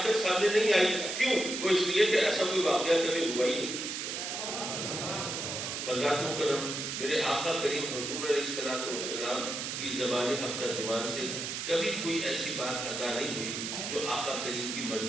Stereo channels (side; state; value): right; noise; hiss, 4 dB below the sound